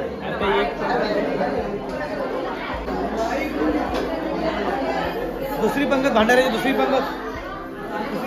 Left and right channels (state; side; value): identical; both; correlation 1.00